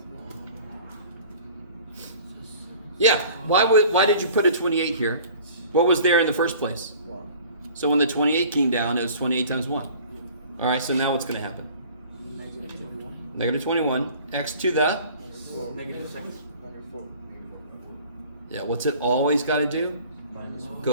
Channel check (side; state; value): both; inverted; correlation -0.48